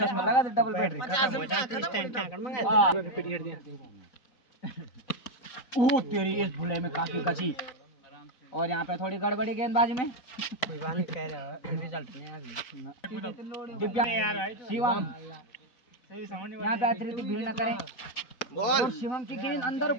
डबल बैटरी। ओ तेरी इस भुले में काफी गति और यहाँ पे थोड़ी गड़बड़ी गेंदबाजी में शिवम यहाँ पे अतिरिक्त भीड़ न करें और शिवम की गेंद अंदर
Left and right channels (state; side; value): late; right; 4.0 ms